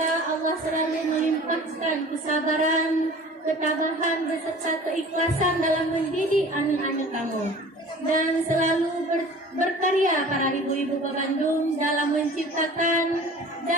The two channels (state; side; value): normal; both; correlation 0.44